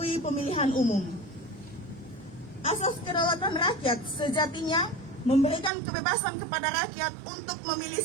pemilihan umum. Asas kedaulatan rakyat sejatinya memberikan kebebasan kepada rakyat untuk memilih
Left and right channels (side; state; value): left; drops out; at 5.7 s